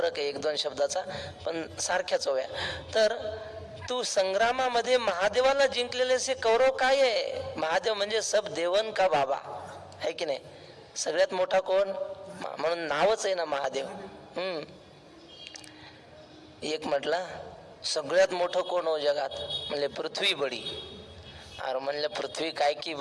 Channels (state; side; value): identical; both; correlation 1.00